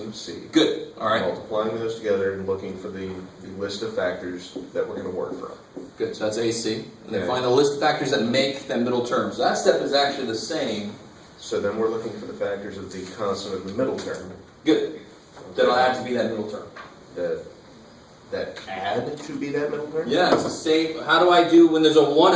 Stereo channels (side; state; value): both; identical; correlation 1.00